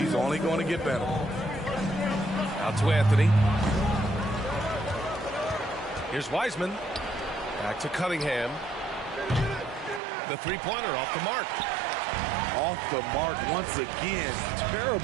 only going to get better. Out to Anthony. Here's Wiseman. Back to Cunningham. The three-pointer off the mark. Off the mark once again.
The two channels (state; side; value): drops out; left; at 10.0 s